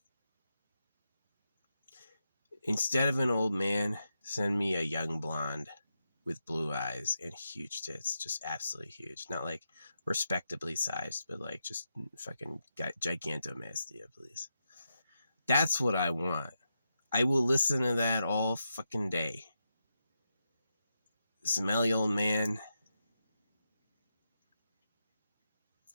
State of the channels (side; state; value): both; inverted; correlation -0.86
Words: Instead of an old man, send me a young blonde with blue eyes and huge tits. Just absolutely huge. Not like respectably sized, but like just fucking gigantomastia, please. That's what I want. I will listen to that all fucking day. Smelly old man.